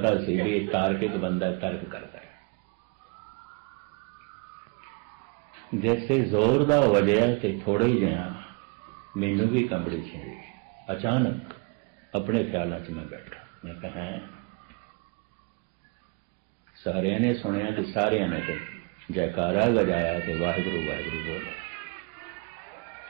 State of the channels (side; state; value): left; quieter; 30.6 dB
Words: सी भी तार्किक बंदा तर्क करता है। जैसे जोर दा वजया तो थोड़े ही जिहा मैनू भी कंबड़ी छिड़ी। अचानक अपने ख्यालों च मैं बैठा, मैं कहा सारे ने सुनिया तो सारे ने तो जयकारा बजाया तो वाहिगुरू वाहिगुरू बोलो।